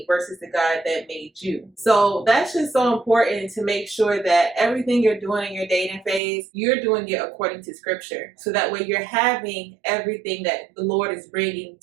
versus the God that made you. So that's just so important, to make sure that everything you're doing in your dating phase, you're doing it according to scripture. So that way you're having everything that the Lord is bringing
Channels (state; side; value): drops out; left; at 6.2 s